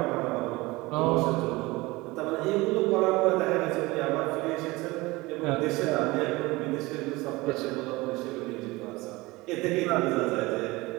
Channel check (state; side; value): quieter; left; 21.7 dB